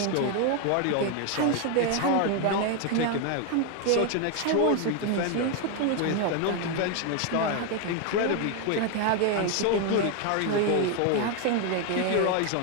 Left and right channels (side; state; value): both; different; correlation 0.01